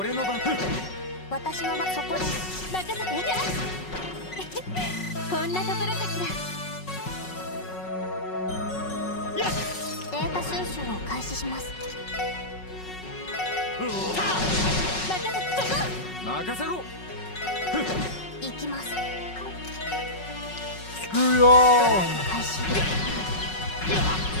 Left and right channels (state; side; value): late; right; 5.4 ms